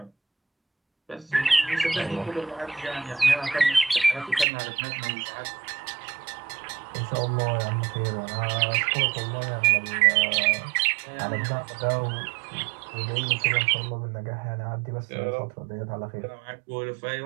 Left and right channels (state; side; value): drops out; left; at 4.5 s